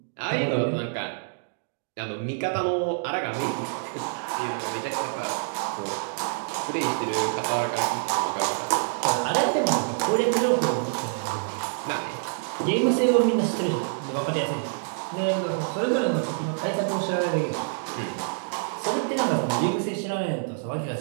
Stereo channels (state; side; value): silent; left; digital silence